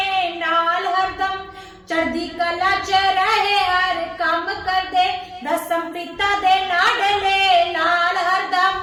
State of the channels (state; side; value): identical; both; correlation 1.00